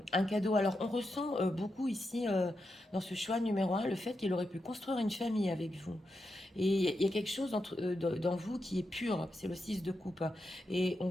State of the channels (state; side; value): normal; both; correlation 0.86